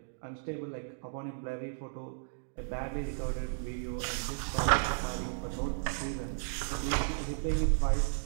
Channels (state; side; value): silent; left; digital silence